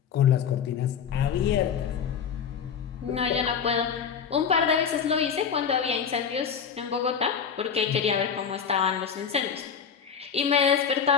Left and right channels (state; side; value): quieter; right; 7.1 dB